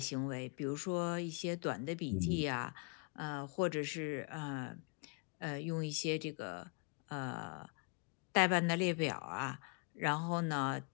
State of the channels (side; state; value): right; quieter; 34.8 dB